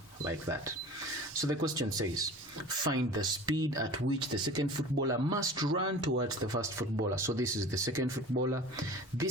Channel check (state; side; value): normal; both; correlation 0.39